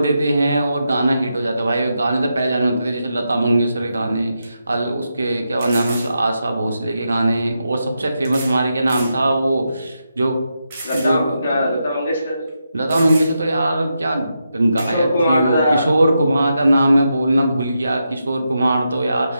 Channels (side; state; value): both; inverted; correlation -0.85